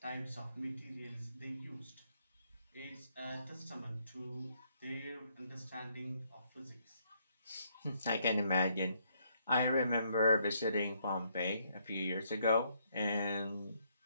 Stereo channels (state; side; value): inverted; both; correlation -0.71